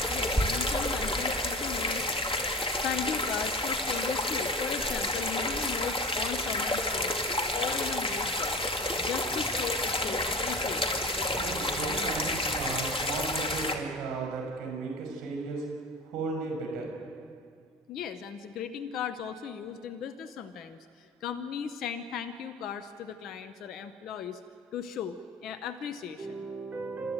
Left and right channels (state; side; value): normal; both; correlation 0.33